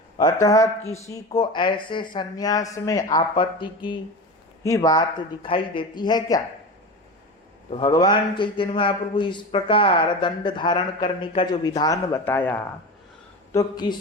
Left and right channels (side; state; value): both; normal; correlation 0.27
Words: अतः किसी को ऐसे सन्यास में आपत्ति की ही बात दिखाई देती है क्या? तो भगवान चैतन्य महाप्रभु इस प्रकार दंड धारण करने का जो विधान बताया, तो